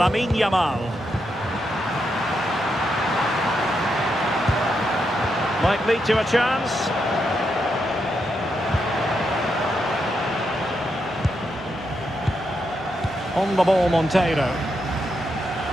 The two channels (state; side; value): normal; both; correlation 0.82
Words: Yamal. Might lead to a chance. On the ball, Monteiro.